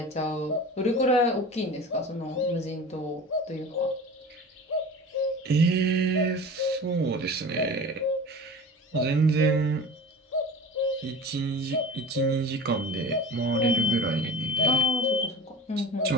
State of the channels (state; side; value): normal; both; correlation 0.36